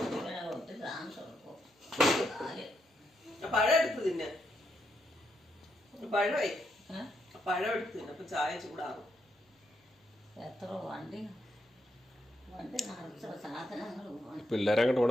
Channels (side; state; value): both; normal; correlation 0.80